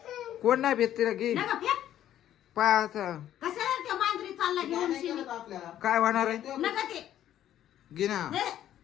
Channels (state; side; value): quieter; right; 11.6 dB